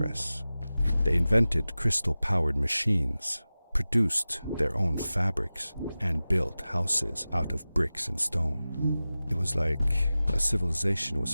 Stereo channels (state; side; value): inverted; both; correlation -0.96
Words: They invented crystal-powered machines, produced their own fabrics, and built houses out of bricks and stone. It was like a civilization was